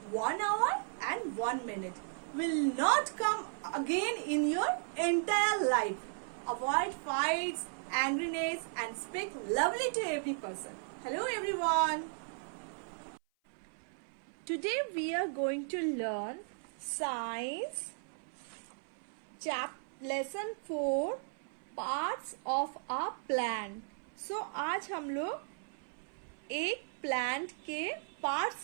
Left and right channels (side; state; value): left; silent; 54 dB below the other